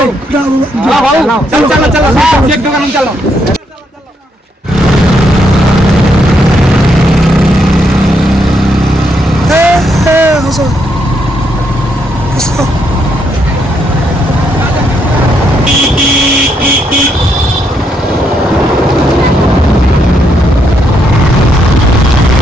चलो चलो चलो एक दुकान में चलो हसो हसो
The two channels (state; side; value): normal; both; correlation 0.76